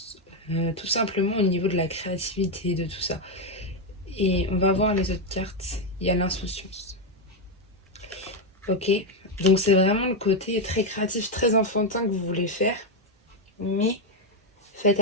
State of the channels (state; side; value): normal; both; correlation 0.05